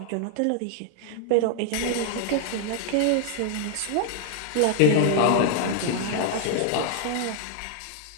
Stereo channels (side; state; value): both; different; correlation -0.01